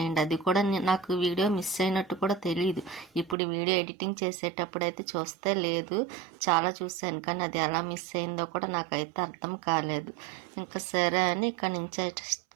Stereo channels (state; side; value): drops out; left; at 3.4 s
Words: అది కూడా నాకు వీడియో మిస్ అయినట్టు కూడా తెలియదు. ఇప్పుడు వీడియో ఎడిటింగ్ చేసేటప్పుడు అయితే చూస్తే లేదు, చాలా చూశాను, కానీ అది ఎలా మిస్ అయిందో కూడా నాకైతే అర్థం కాలేదు. ఇంకా సరే అని ఇక్కడ నుంచి